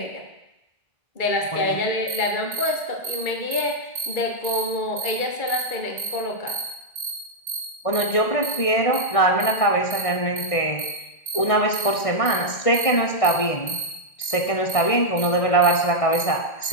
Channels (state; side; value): late; right; 1.6 ms